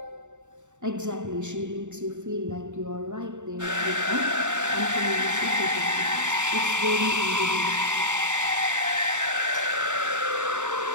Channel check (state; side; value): late; left; 0.85 ms